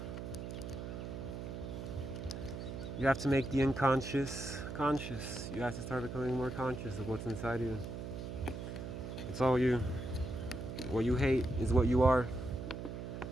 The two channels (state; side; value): noise; right; hum, 7 dB below the sound